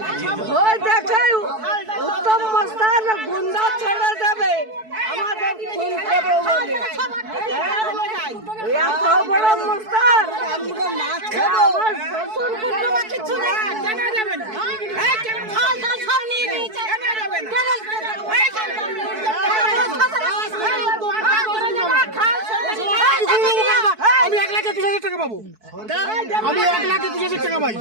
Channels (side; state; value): left; late; 4.6 ms